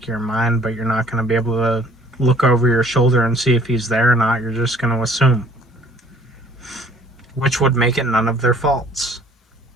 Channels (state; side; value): normal; both; correlation 0.56